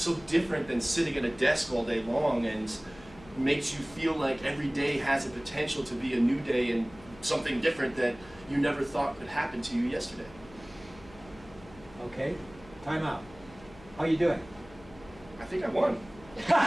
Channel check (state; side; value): noise; left; hum, 21 dB below the sound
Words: different than sitting at a desk all day long and makes you feel like every day has a potential to be a new day and something different that you never thought could happen to you yesterday. Okay, time out. How you doing? I think I won.